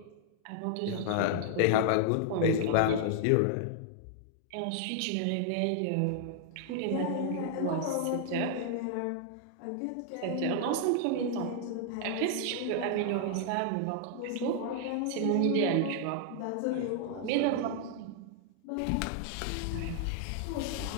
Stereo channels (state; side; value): different; both; correlation -0.01